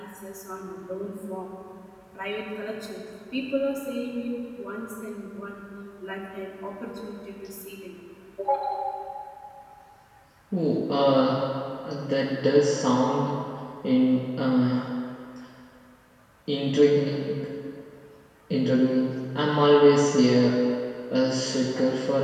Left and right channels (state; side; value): identical; both; correlation 1.00